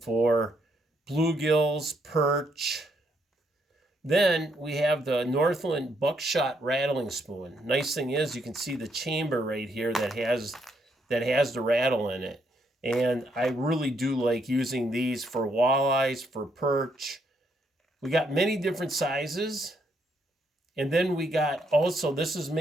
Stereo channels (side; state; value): both; normal; correlation 0.74